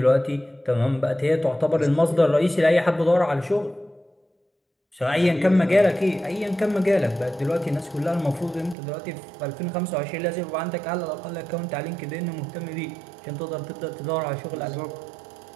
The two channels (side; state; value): left; drops out; at 8.8 s